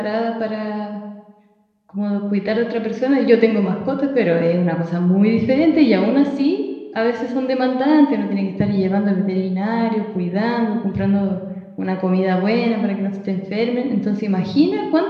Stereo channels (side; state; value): both; identical; correlation 1.00